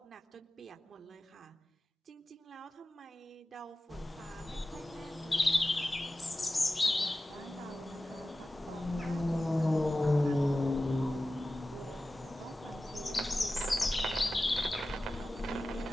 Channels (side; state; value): both; normal; correlation 0.95